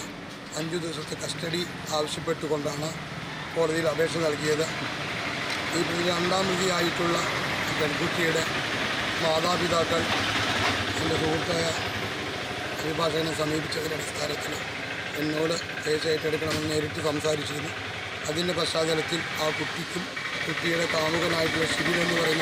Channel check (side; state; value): both; identical; correlation 1.00